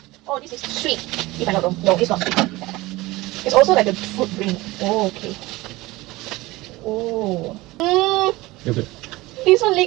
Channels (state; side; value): quieter; left; 20.1 dB